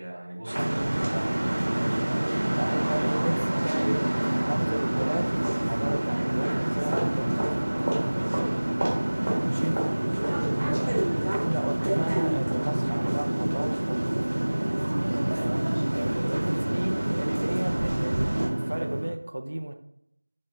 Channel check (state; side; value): inverted; both; correlation -1.00